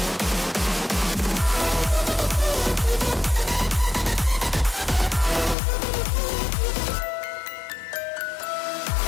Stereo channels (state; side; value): drops out; right; at 5.6 s